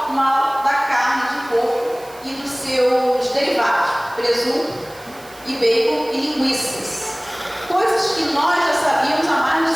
mal da carne de porco e dos seus derivados, presunto e bacon e linguiças. Coisas que nós já sabíamos há mais de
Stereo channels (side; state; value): right; noise; hiss, 23 dB below the sound